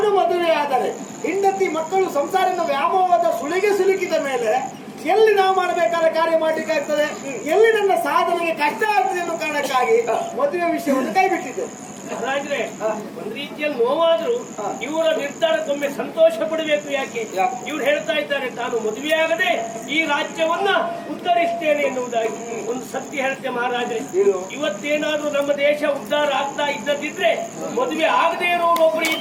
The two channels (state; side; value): identical; both; correlation 1.00